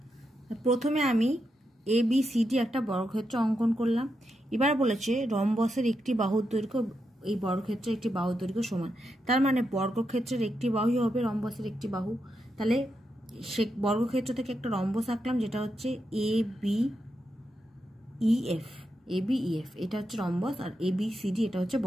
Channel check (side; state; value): both; normal; correlation 0.85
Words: প্রথমে আমি ABCD একটা বর্গক্ষেত্র অঙ্কন করলাম। এবার বলেছে রম্বসের একটি বাহুর দৈর্ঘ্য এই বর্গক্ষেত্রের একটি বাহুর দৈর্ঘ্য সমান। তার মানে বর্গক্ষেত্রের একটি বাহুই হবে রম্বসের একটি বাহু। তাহলে সে বর্গক্ষেত্র থেকে একটা রম্বস আঁকলাম যেটা হচ্ছে ABEF। এটা হচ্ছে রম্বস, আর ABCD এটা হচ্ছে